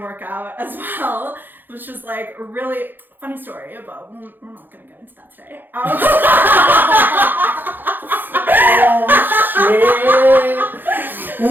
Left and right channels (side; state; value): left; late; 0.091 ms